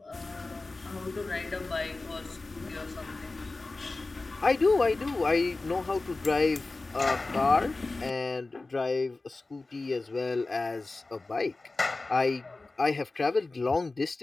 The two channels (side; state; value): right; quieter; 3.4 dB